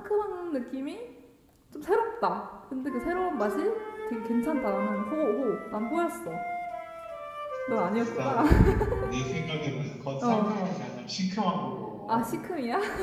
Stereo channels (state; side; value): identical; both; correlation 1.00